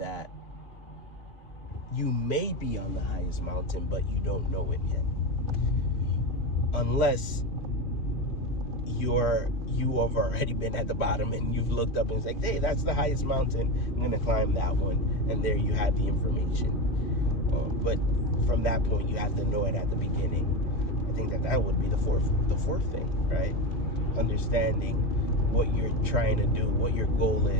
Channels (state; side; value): late; right; 3.3 ms